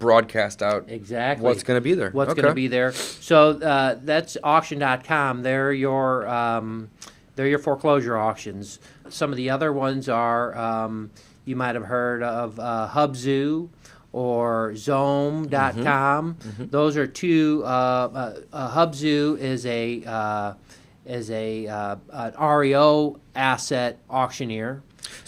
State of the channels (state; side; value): identical; both; correlation 1.00